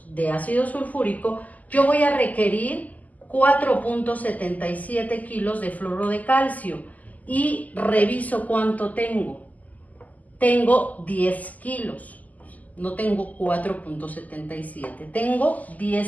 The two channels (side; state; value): right; late; 0.078 ms